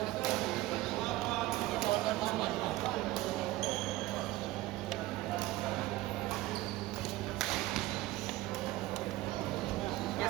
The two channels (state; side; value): quieter; left; 17.5 dB